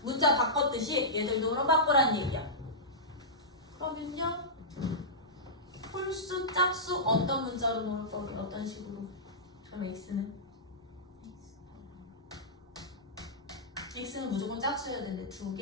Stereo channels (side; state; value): both; normal; correlation -0.15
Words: 문자 바꿨듯이 얘들도 그럼 바꾸라는 얘기야. 그러면요. 홀수, 짝수 어떤 문자로 놓을 거게? 어떤 식으로? 그럼 x는 무조건 짝수여야 되는데